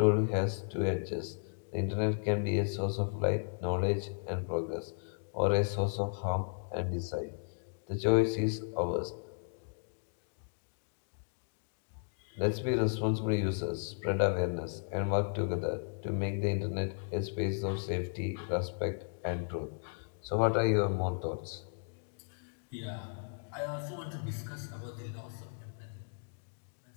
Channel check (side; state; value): right; silent; digital silence